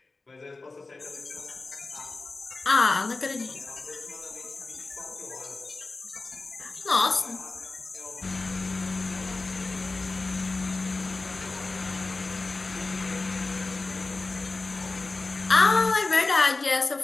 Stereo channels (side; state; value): right; quieter; 3.5 dB